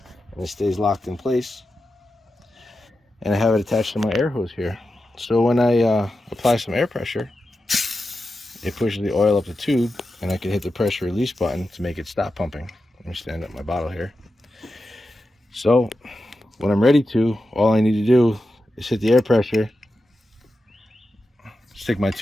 and it stays locked in place, and I have it attached to my air hose here. So when I apply some air pressure, it pushes the oil up the tube and I can hit the pressure release button to make it stop pumping. Let me stand up my bottle here. So when I'm ready to, all I need to do is hit the air pressure, stick my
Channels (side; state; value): both; normal; correlation 0.91